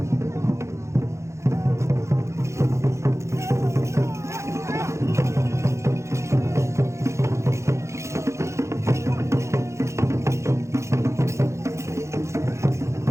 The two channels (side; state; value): left; late; 0.14 ms